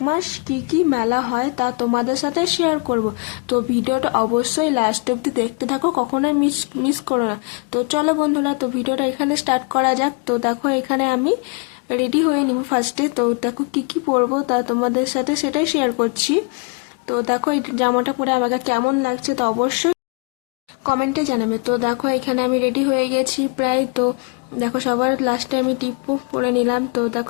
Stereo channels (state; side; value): quieter; right; 31.9 dB